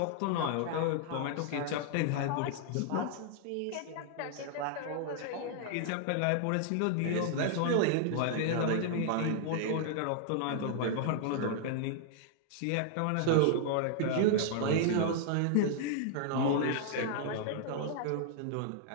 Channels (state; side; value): different; both; correlation -0.01